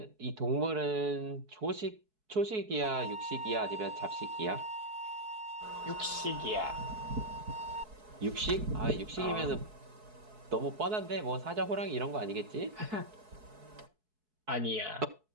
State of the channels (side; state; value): left; late; 4.6 ms